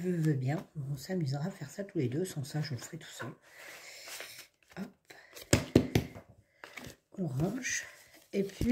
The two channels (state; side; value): identical; both; correlation 1.00